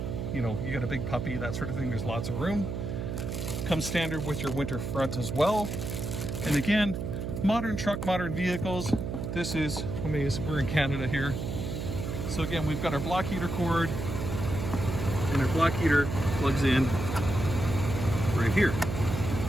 know, you got a big puppy, that sort of thing. There's lots of room. Comes standard with your winter front as well. And again, modern truck, modern vehicles. This is, we're in Canada here. So again, we've got our block heater cord, and our block heater plugs in right here,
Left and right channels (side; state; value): right; noise; hum, 4 dB below the sound